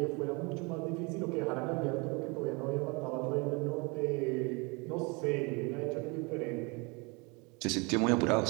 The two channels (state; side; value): quieter; left; 29.0 dB